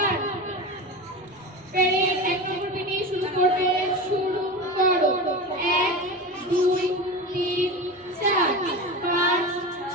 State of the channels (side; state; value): both; normal; correlation 0.26